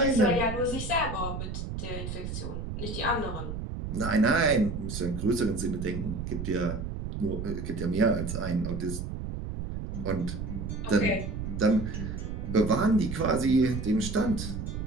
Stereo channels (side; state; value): right; noise; rumble, 5 dB below the sound